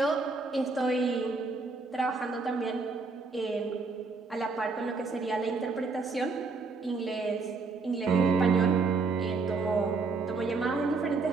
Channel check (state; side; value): quieter; left; 4.2 dB